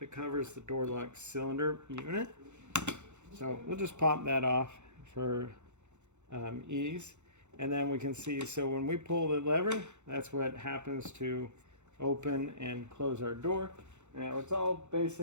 that covers the door lock cylinder unit. So we'll just pop that off for ease. And then we can see, so when we pull the lever, that's what happens to open and close our door. Now it's all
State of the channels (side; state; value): left; late; 0.83 ms